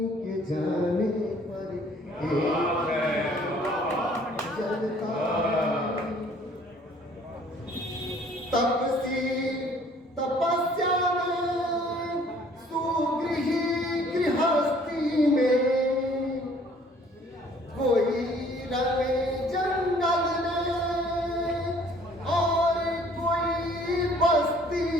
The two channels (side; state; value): both; normal; correlation 0.57